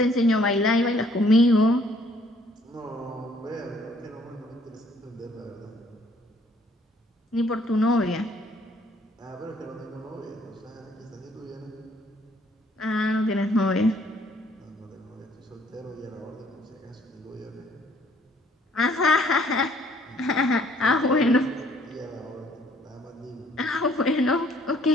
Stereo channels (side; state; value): both; normal; correlation 0.62